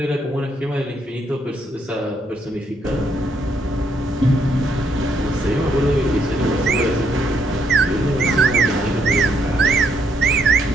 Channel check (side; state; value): both; normal; correlation 0.73